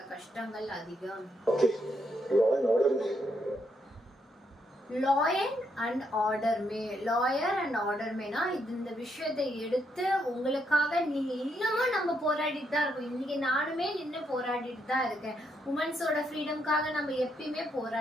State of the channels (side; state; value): both; normal; correlation 0.77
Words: கஷ்டங்கள் அதிகம். லாயர் அண்ட் ஆர்டர் மேனா இந்த விஷயத்தை எடுத்து உங்களுக்காக நீங்க இன்னமும் நம்ம போராடிட்டு தான் இருக்கோம். இன்னைக்கு நானுமே நின்று போராடிட்டு தான் இருக்கேன். உமன்ஸோட ஃப்ரீடம்காக நம்ம எப்பயுமே